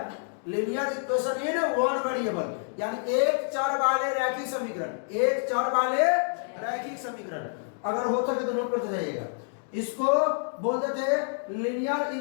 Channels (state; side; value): silent; right; digital silence